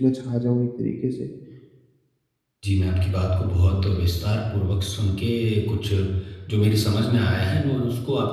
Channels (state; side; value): identical; both; correlation 1.00